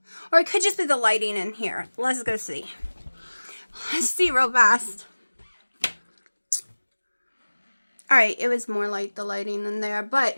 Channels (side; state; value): both; inverted; correlation -1.00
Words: Or it could just be the lighting in here. Let's go see. Let's see real fast. Alright, it was more like the lighting in there.